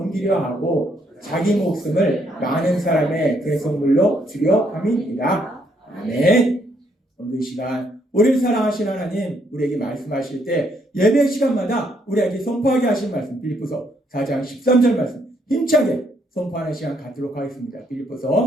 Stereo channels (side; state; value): both; normal; correlation 0.72